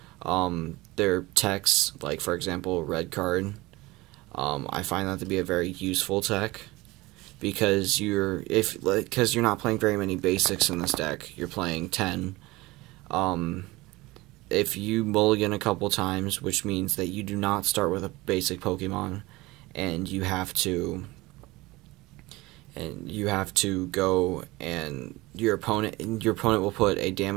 They're techs, like for example, red card. I find that to be a very useful tech, because you're not playing very many basics in this deck. You're playing 10. If you mulligan a couple times, which means that you do not start with a basic Pokemon, and you have to go, and your opponent will put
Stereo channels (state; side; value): quieter; left; 21.0 dB